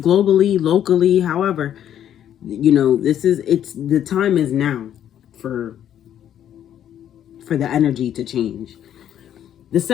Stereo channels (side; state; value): right; quieter; 10.4 dB